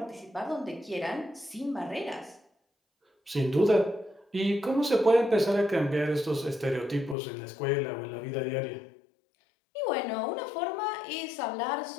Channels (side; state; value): right; drops out; at 7.2 s